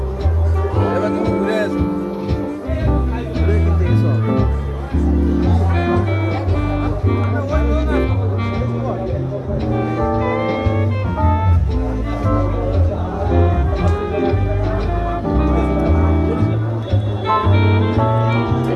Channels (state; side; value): identical; both; correlation 1.00